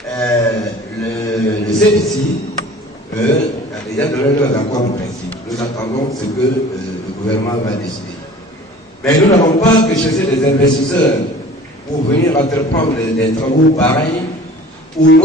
le CFC a déjà donné leurs accords en principe. Nous attendons ce que le gouvernement va décider. Mais nous n'avons pas que chercher des investisseurs pour venir entreprendre des travaux pareils où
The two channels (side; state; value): both; normal; correlation 0.45